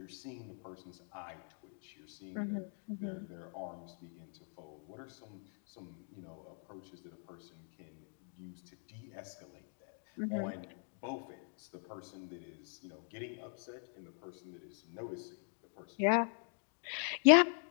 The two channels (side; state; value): right; silent; 50 dB below the other